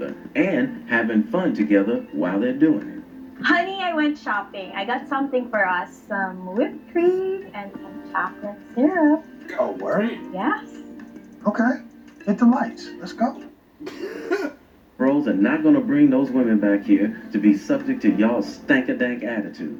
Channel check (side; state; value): both; identical; correlation 1.00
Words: and having fun together while they're doing it. Honey, I went shopping. I got something for us. Some whipped cream and some chocolate syrup. Oh, word? Yes. Okay. Hit the lights. Let's go. Bros are not going to bring those women back here to be subject to y'all's stank-a-dank